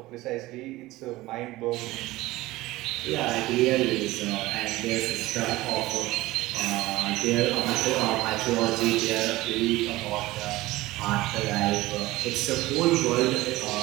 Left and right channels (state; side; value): quieter; left; 18.4 dB